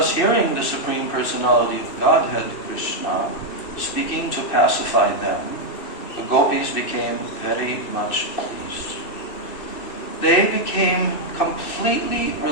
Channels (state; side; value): late; right; 2.6 ms